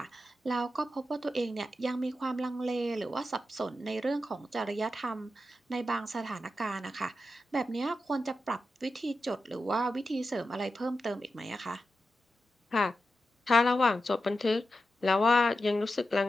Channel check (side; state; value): both; normal; correlation 0.89